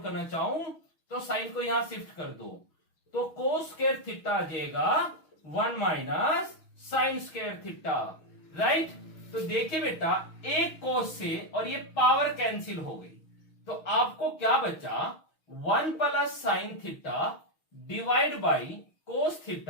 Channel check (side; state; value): right; late; 6.3 ms